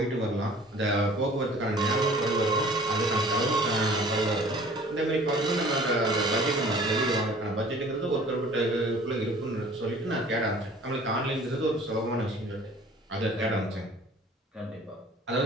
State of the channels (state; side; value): normal; both; correlation 0.49